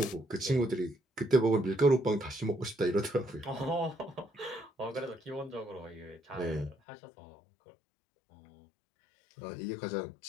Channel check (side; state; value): right; drops out; at 6.8 s